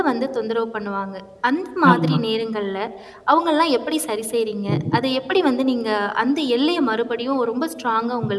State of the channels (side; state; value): both; identical; correlation 1.00